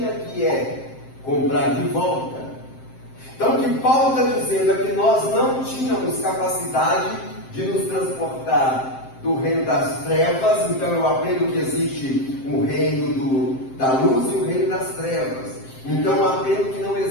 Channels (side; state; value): right; late; 7.6 ms